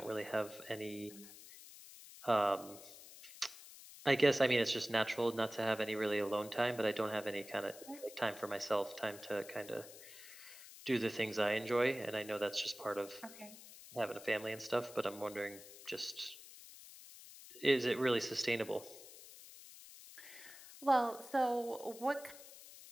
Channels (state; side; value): noise; left; hiss, 16 dB below the sound